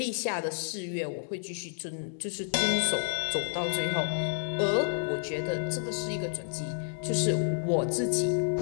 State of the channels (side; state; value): right; silent; digital silence